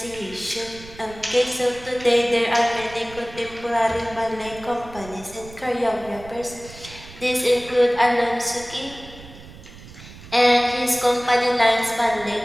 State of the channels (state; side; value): noise; right; rumble, 18 dB below the sound